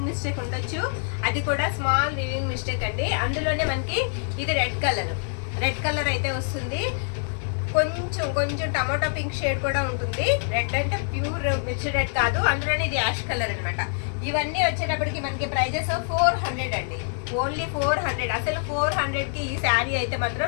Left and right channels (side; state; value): right; silent; digital silence